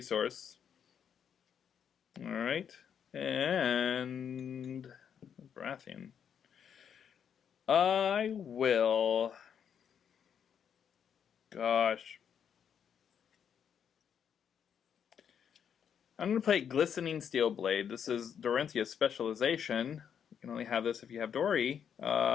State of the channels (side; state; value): right; quieter; 8.0 dB